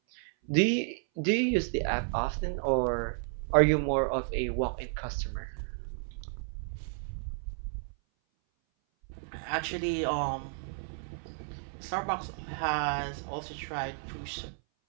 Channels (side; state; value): left; silent; 56 dB below the other